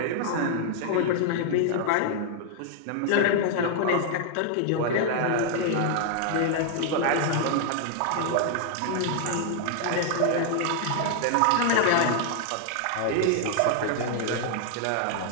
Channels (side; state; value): both; different; correlation 0.00